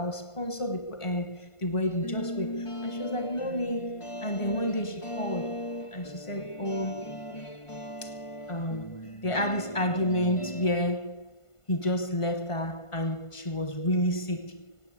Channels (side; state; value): right; late; 1.5 ms